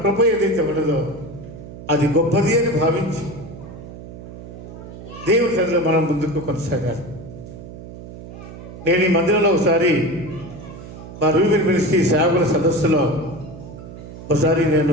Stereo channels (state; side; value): noise; right; hum, 14 dB below the sound